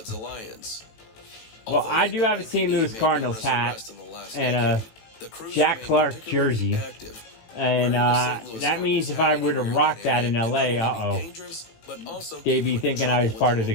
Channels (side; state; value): right; late; 18 ms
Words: Alliance. Well, I do have a St. Louis Cardinals hat and a Jack Clark jersey. And that means if I were to rock that in LA, they'd be thinking I was part of the